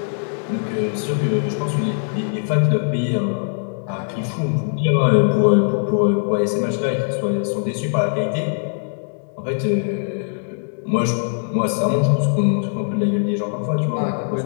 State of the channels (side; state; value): right; silent; digital silence